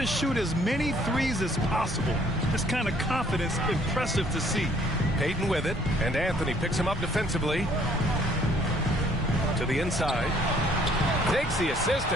shoot as many threes as possible. This kind of confidence, impressive to see. Payton with it, and Anthony picks him up defensively. To the inside. Takes the assist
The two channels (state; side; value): normal; both; correlation 0.61